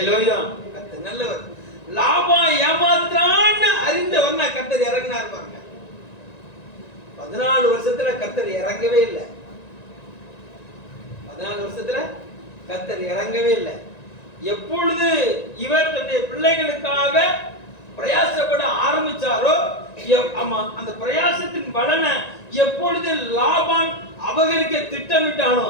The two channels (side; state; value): right; late; 1.9 ms